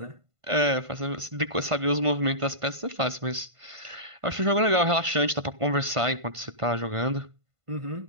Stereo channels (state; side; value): late; left; 1.5 ms